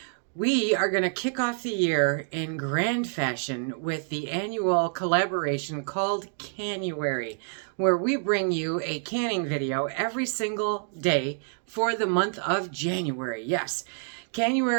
We are going to kick off the year in grand fashion with the annual collaboration called Canuary, where we bring you a canning video every single day for the month of January. Yes,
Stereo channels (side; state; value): left; silent; 60 dB below the other